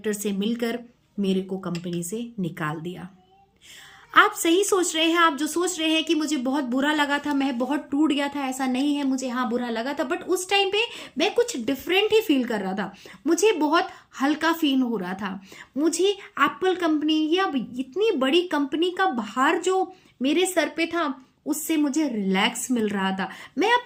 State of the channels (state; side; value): identical; both; correlation 1.00